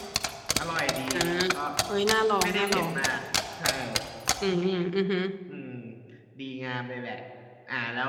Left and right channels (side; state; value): both; identical; correlation 1.00